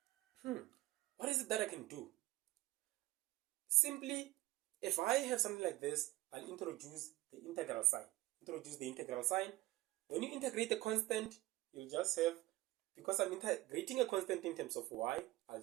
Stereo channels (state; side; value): quieter; left; 18.0 dB